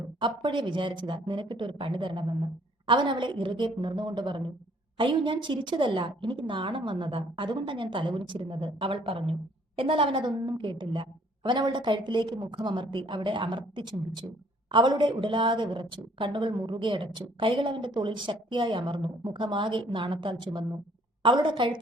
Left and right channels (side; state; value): both; normal; correlation 0.61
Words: അപ്പോഴേ വിചാരിച്ചതാ നിനക്കിട്ടൊരു പണി തരണമെന്ന്. അവൻ അവളെ ഇറുകെ പുണർന്നുകൊണ്ട് പറഞ്ഞു. അയ്യോ, ഞാൻ ചിരിച്ചതല്ല, എനിക്ക് നാണം വന്നതാ, അതുകൊണ്ടാണ് ഞാൻ തലകുനിച്ചിരുന്നത്, അവൾ പറഞ്ഞു. എന്നാൽ അവൻ അതൊന്നും കേട്ടില്ല. അവൻ അവളുടെ കഴുത്തിലേക്ക് മുഖമമർത്തി അവിടെ അമർത്തി ചുംബിച്ചു. അവളുടെ ഉടലാകെ വിറച്ചു, കണ്ണുകൾ മുറുകെ അടച്ചു, കൈകൾ അവന്റെ തോളിൽ ശക്തിയായി അമർന്നു, മുഖമാകെ നാണത്താൽ ചുമന്നു. അവളുടെ